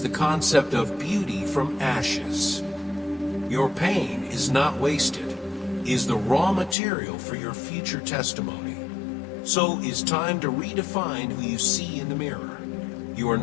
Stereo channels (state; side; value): drops out; right; at 6.8 s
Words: the concept of beauty from ashes. Your pain is not wasted, is the raw material for your future testimony. So is time to redefine who you see in the mirror. You are